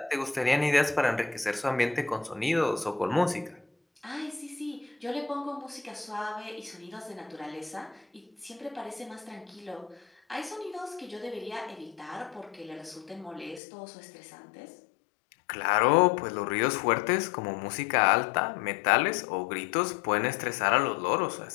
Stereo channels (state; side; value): drops out; right; at 13.6 s